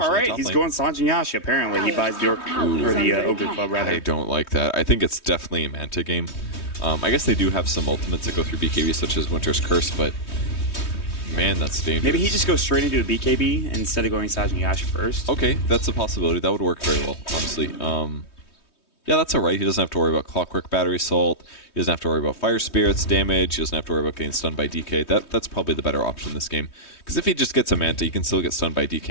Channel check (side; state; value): right; late; 3.2 ms